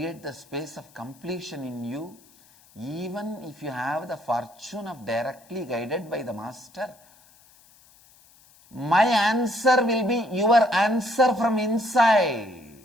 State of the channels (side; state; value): left; noise; hiss, 28 dB below the sound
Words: the space of completion in you, even if you have the fortune of directly guided by the Master, my answer will be your answer from inside.